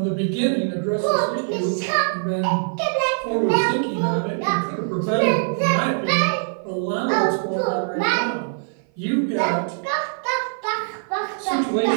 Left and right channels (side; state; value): left; silent; 55 dB below the other